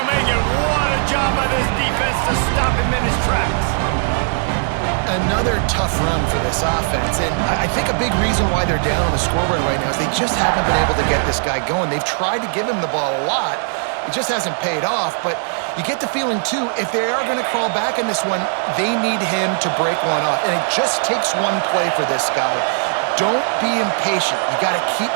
make it. What a job by this defense to stop him in his tracks. Another tough run for this offense, and I think a big reason why they're down on the scoreboard right now is they just haven't been able to get this guy going. They've tried to give him the ball a lot. It just hasn't paid off, but you get the feeling, too, if they are going to crawl back in this one, they need him to break one off, and it just takes one play for this guy. Don't be impatient. You got to keep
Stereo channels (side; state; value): left; silent; 67 dB below the other